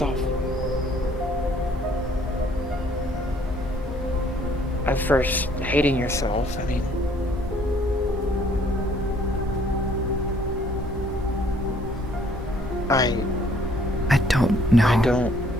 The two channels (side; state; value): both; normal; correlation 0.61